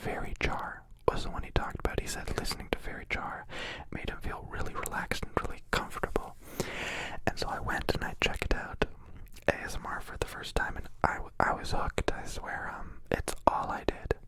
Jar was the one he talked about. He said listening to Fairy Jar made him feel really relaxed and really comfortable. And so I went and I checked out ASMR for the first time, and I was hooked. I swear, it's all I did.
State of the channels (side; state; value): both; identical; correlation 1.00